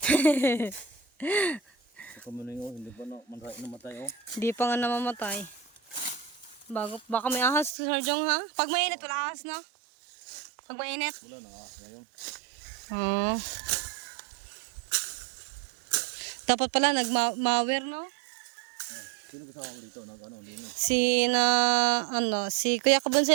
Sa kamuning oh, hindi pa namatay oh. di pa nga namamatay. Baka may ahas si Sir Jong, ha? Pag mainit, wala ahas na. Pag mainit. Wala na ngayon. Oo. Dapat pala nagmawer, no? Sino kasama mo dito? Ano, linis? Si Kuya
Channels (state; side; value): drops out; left; at 7.8 s